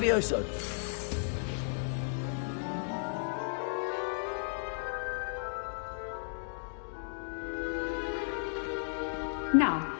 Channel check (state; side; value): silent; right; digital silence